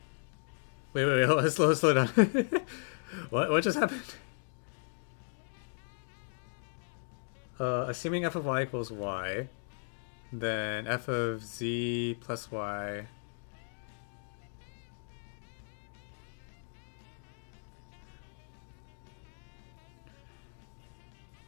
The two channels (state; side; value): silent; right; digital silence